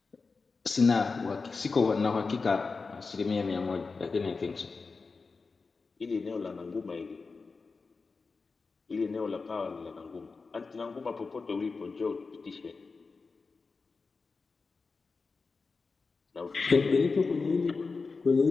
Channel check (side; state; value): right; quieter; 4.4 dB